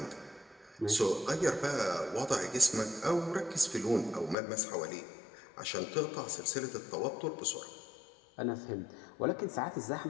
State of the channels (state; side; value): drops out; right; at 4.4 s